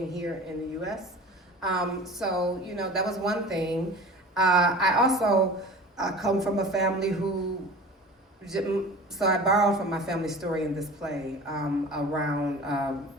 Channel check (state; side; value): normal; both; correlation 0.39